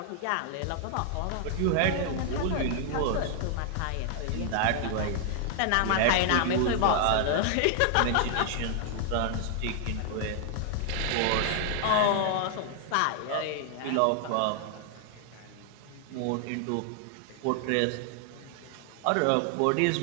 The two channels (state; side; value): different; both; correlation 0.00